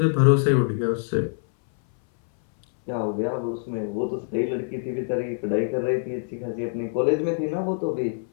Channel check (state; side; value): silent; right; 59 dB below the other